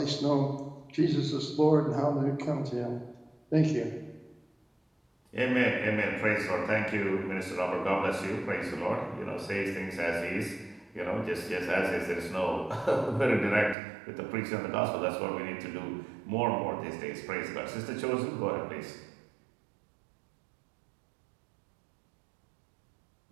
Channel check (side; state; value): left; drops out; at 13.8 s